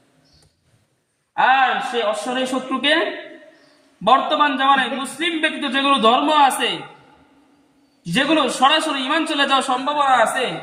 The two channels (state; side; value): identical; both; correlation 1.00